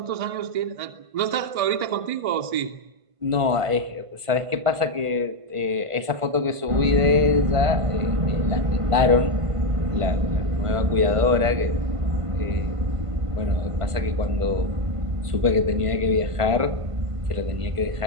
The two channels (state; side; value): late; left; 1.5 ms